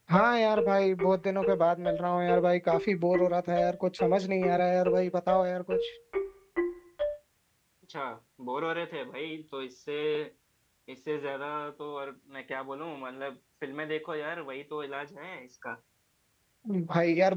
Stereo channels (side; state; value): both; identical; correlation 1.00